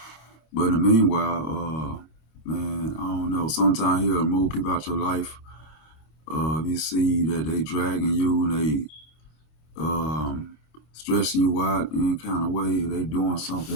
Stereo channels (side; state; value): right; late; 25 ms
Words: But in the meanwhile, man, I don't know. Sometimes He'll remove people out your life. If you see that they dragging you and they stressing you out in any kind of way, they doing